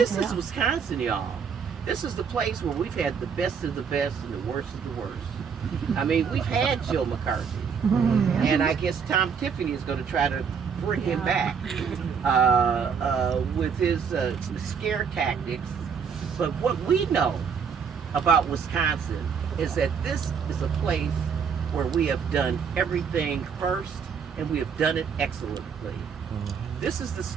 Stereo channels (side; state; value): left; quieter; 6.5 dB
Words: is Wisconsin, y'all. This is the place where we've had the best of the best and the worst of the worst. I mean, we've had Joe McCarthy, and I guess Tom Tiffany is going to try to bring him back with his scare tactics. But what we know about Wisconsin is that this is a place where we have done everything first, and we have done it excellently. This is the